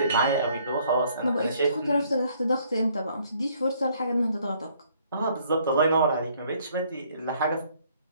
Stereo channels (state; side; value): inverted; both; correlation -0.64